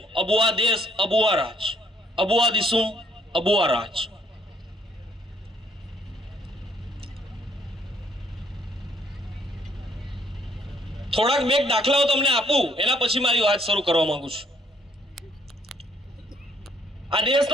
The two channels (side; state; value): both; normal; correlation 0.65